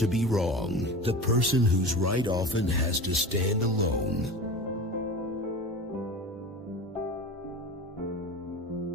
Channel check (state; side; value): normal; both; correlation 0.32